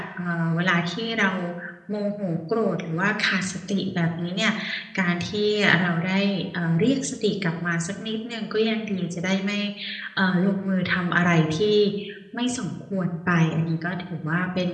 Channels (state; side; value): identical; both; correlation 1.00